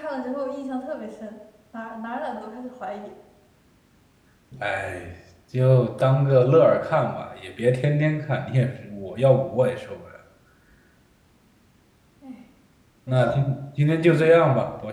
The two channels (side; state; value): both; identical; correlation 1.00